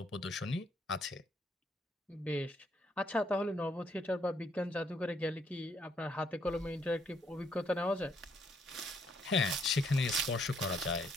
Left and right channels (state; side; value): normal; both; correlation 0.70